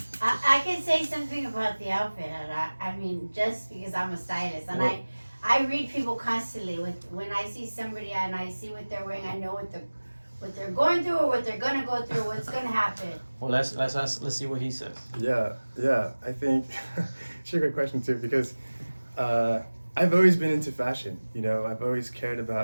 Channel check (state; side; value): inverted; both; correlation -1.00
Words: I can say something about the outfit, and I mean, just because I'm a stylist, and Well- I read people constantly. When I see somebody and I see what they're wearing, I know what they're going through or what they're gonna go through, what's gonna happen. Well, let's see what he says. Yeah. I think it's a great question too, because I've always been into fashion. You know, I've always cared